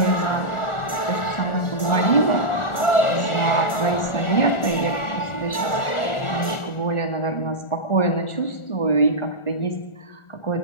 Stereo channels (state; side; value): late; right; 1.4 ms